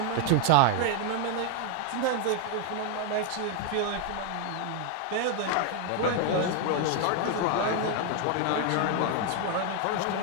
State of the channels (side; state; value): both; different; correlation 0.01